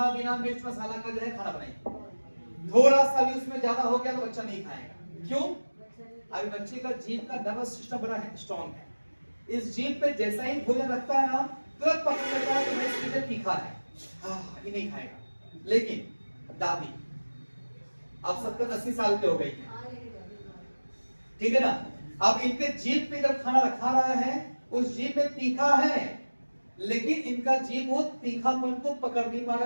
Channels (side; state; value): both; inverted; correlation -1.00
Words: बिना मिर्च मसाला का जो है खाना बनाइए। थोड़ा सा भी उसमें ज्यादा हो गया तो बच्चा नहीं खाएगा। क्यों? अभी बच्चे का जीभ का नर्वस सिस्टम बड़ा है, स्ट्रॉन्ग है। इस जीभ पे जैसा ही भोजन रखता है ना, तुरंत पकड़ लेता है कि मैं इसके लिए तीखा है, ये नहीं खाएगा। लेकिन दादी अब 70-80 साल के हो गई है, ठीक है ना, अब इनके जीभ पे जब खाना रखा रहा है, उस जीभ में तीखा है, लेकिन इनका जीभ वो तीखापन को पकड़ नहीं पा